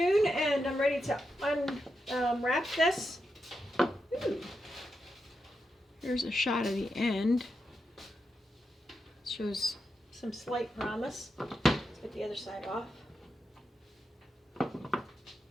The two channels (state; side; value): normal; both; correlation 0.86